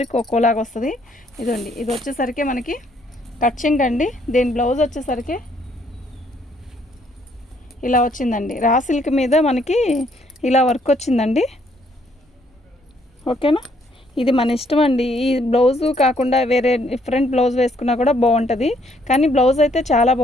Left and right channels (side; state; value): both; normal; correlation 0.68